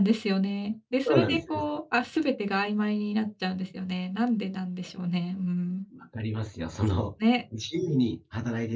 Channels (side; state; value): both; identical; correlation 1.00